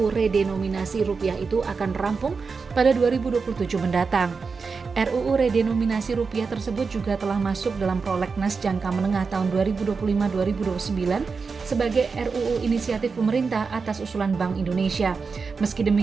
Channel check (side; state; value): left; quieter; 4.9 dB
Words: redenominasi rupiah itu akan rampung pada 2027 mendatang. RUU redenominasi rupiah tersebut juga telah masuk dalam prolegnas jangka menengah tahun 2025-2029 sebagai RUU inisiatif pemerintah atas usulan Bank Indonesia. Meski